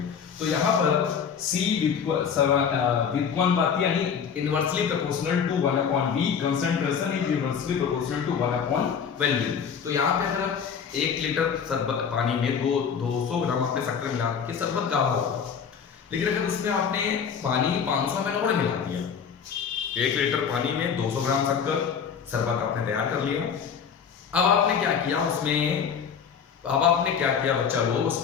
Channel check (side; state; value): right; quieter; 7.0 dB